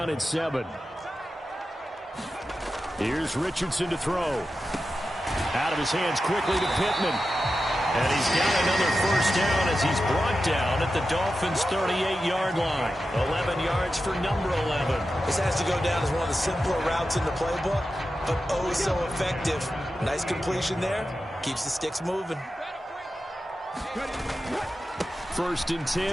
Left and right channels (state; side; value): normal; both; correlation 0.91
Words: and 7. Here's Richardson to throw. Out of his hands quickly to Pittman. And he's got another first down as he's brought down at the Dolphins' 38-yard line. 11 yards for number 11. This has to go down as one of the simpler routes in the playbook, but oh so effective. Nice completion there. Keeps the sticks moving. 1st and